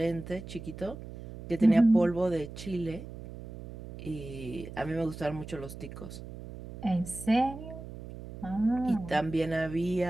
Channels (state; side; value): noise; right; hum, 12 dB below the sound